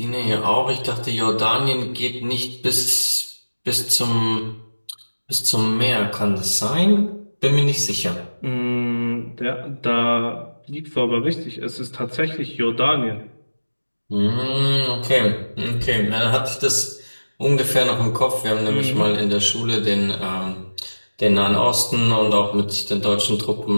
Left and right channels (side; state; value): both; inverted; correlation -1.00